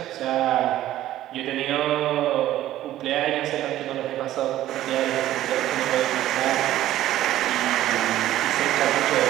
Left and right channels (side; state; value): left; quieter; 13.7 dB